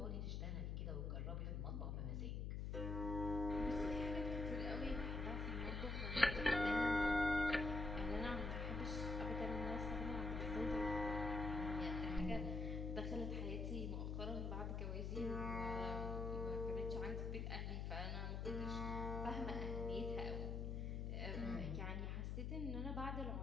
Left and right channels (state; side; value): noise; left; hum, 1 dB below the sound